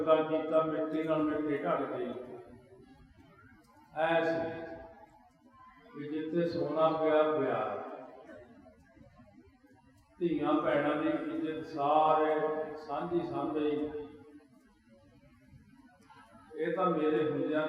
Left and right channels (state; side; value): identical; both; correlation 1.00